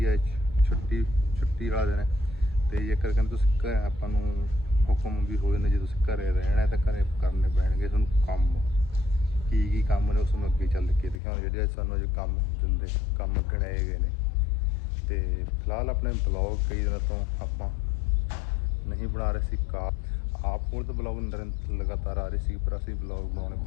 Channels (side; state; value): right; drops out; at 11.2 s